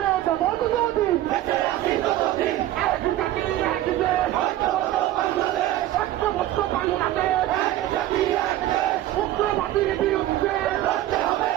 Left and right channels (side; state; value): left; quieter; 14.1 dB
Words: দেবো ততদিন বেঁচে আছি যতদিন এক জাতি এক দেশ ঐক্যবদ্ধ বাংলাদেশ ঐক্যবদ্ধ বাংলাদেশ এক জাতি এক দেশ উগ্রবাদীর বিরুদ্ধে লড়তে হবে